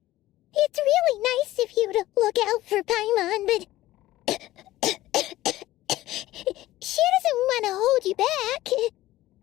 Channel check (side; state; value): right; quieter; 16.0 dB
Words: it's really nice of you to look out for Paimon, but she doesn't want to hold you back.